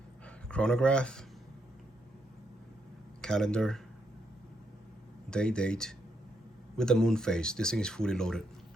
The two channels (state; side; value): normal; both; correlation 0.78